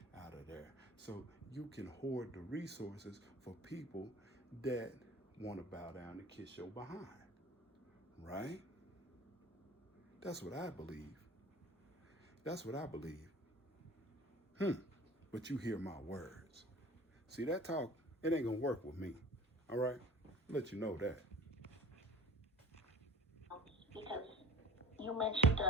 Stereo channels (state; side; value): normal; both; correlation 0.42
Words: out of there. So you can hoard the resources for people that want to bow down and kiss your behind, right? That's what I believe. That's what I believe. But you hear my words. See, that talk, it ain't gonna work with me, all right? I'll let you know that. Because you mentioned